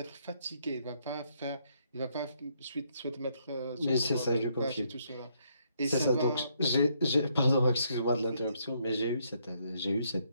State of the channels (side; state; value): both; inverted; correlation -0.72